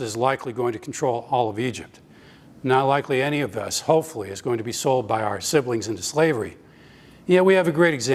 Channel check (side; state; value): both; identical; correlation 1.00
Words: is likely going to control all of Egypt. Not likely any of us, hopefully, is going to be sold by our siblings into slavery. Yet we have a great